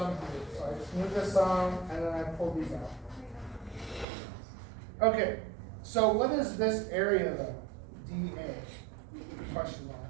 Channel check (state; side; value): drops out; left; at 4.0 s